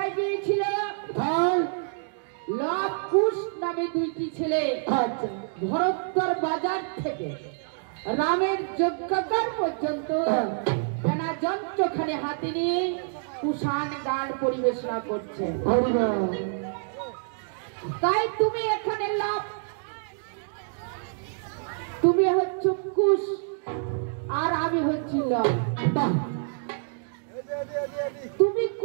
গিয়েছিল? লব কুশ নামে দুইটি ছেলে ভরতর বাজার থেকে রামের যজ্ঞকার পর্যন্ত বেনা যন্ত্রখানে হাতে নিয়ে কুষাণ গান পরিবেশনা করছে। তাই তুমি এখানে লব, তুমি হচ্ছে কুশ আর আমি হচ্ছি লব। তুমি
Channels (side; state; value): left; silent; digital silence